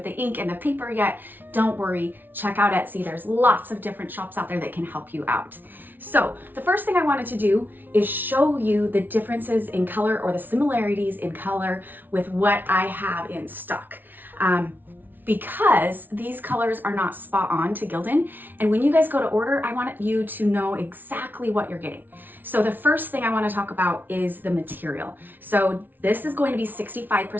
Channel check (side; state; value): left; late; 0.090 ms